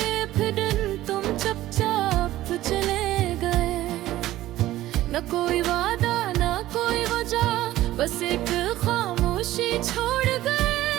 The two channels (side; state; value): left; quieter; 15.2 dB